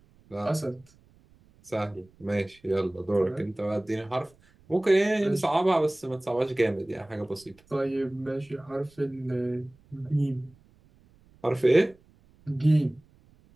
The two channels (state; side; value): noise; right; rumble, 30 dB below the sound